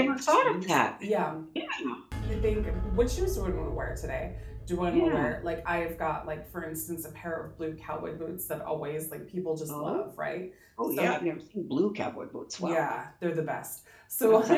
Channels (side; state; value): both; identical; correlation 1.00